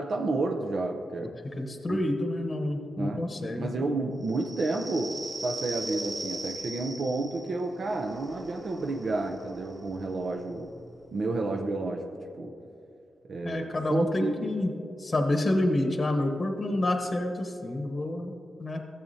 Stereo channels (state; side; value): normal; both; correlation 0.88